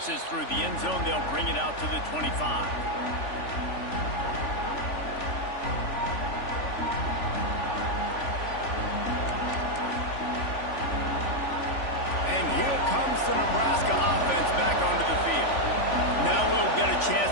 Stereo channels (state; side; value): late; right; 3.5 ms